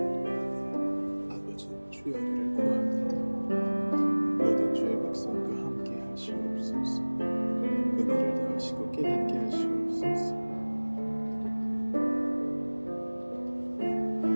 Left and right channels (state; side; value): inverted; both; correlation -1.00